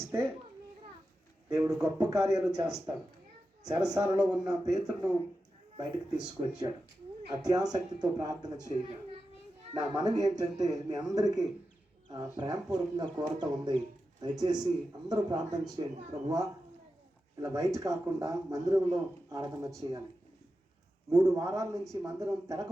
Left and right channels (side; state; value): both; normal; correlation 0.91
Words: దేవుడు గొప్ప కార్యాలు చేస్తాడు. చెరసాలలో ఉన్న పేతురును బయటకు తీసుకొచ్చాడు. అత్యాసక్తితో ప్రార్థన చేయగా నా మనవి ఏంటంటే మీ అందరికీ ప్రేమపూర్వకంగా కోరత ఉంది. దయచేసి అందరూ ప్రార్థన చేయండి. ప్రభువా, ఇలా బయట కాకుండా మందిరంలో ఆరాధన చేయాలి. 3 వారాల నుంచి మందిరం